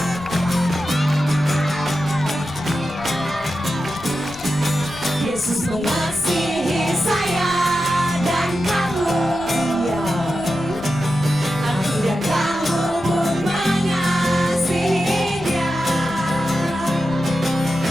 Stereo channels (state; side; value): noise; left; rumble, 19 dB below the sound